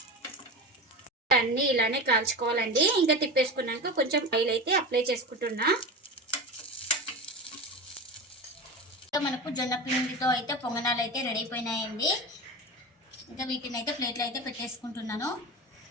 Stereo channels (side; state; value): both; normal; correlation 0.26